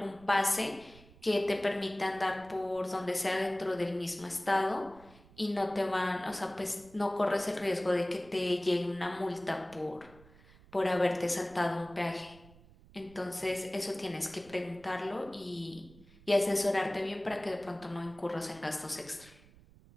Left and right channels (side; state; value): right; noise; rumble, 24 dB below the sound